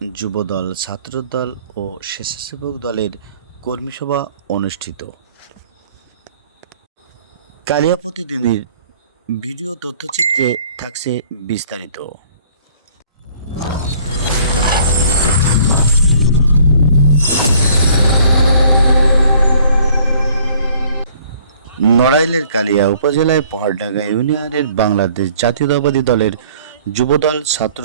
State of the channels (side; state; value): both; inverted; correlation -0.57